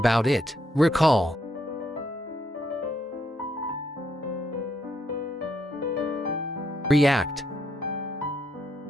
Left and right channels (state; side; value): normal; both; correlation 0.75